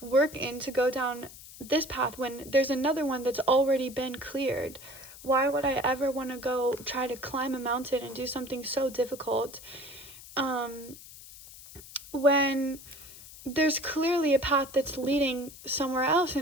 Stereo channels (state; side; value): noise; left; hiss, 17 dB below the sound